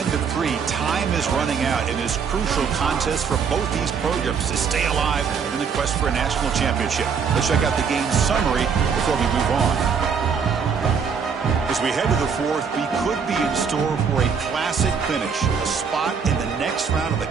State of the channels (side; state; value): left; quieter; 6.3 dB